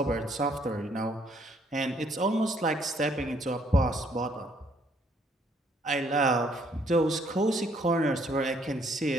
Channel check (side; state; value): both; normal; correlation 0.66